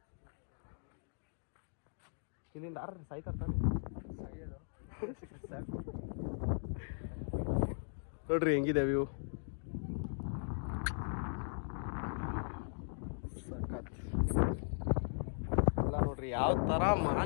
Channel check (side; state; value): right; silent; digital silence